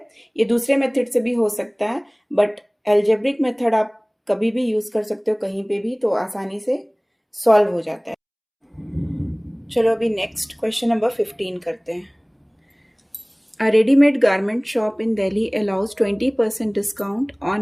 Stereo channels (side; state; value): both; identical; correlation 1.00